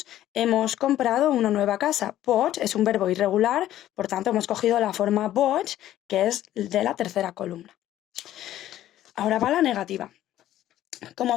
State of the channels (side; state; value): right; quieter; 13.0 dB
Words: hemos comprado una nueva casa. Bought es un verbo irregular, por tanto hemos cogido la forma bought, que es de la tercera columna. Ahora va la negativa.